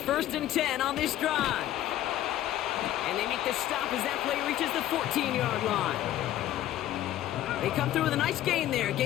and 10 on this drive. And they make the stop as that play reaches the 14-yard line. They come through with a nice gain there.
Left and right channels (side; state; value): right; quieter; 13.2 dB